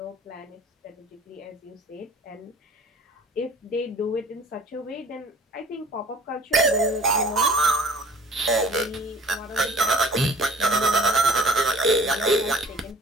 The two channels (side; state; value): both; normal; correlation 0.49